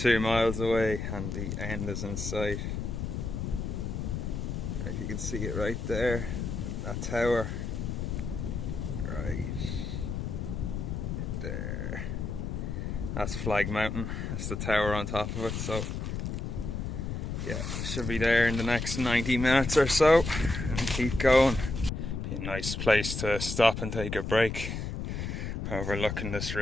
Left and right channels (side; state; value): left; noise; rumble, 3 dB below the sound